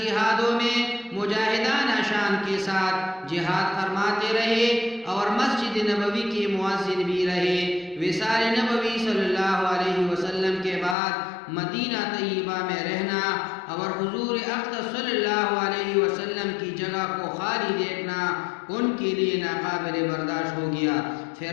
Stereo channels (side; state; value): right; drops out; at 11.0 s